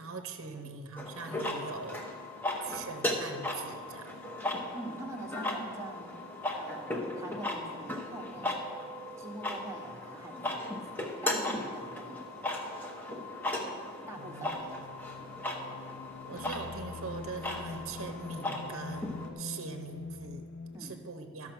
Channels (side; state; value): both; normal; correlation 0.32